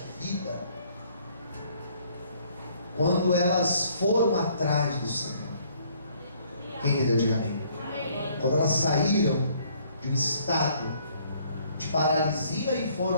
vida, quando elas foram atrás do Senhor. Quem entendeu, diga amém. Quando elas saíram de um estado de paralisia e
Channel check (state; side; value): inverted; both; correlation -0.62